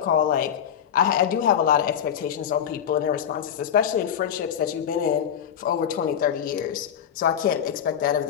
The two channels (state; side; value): quieter; right; 9.0 dB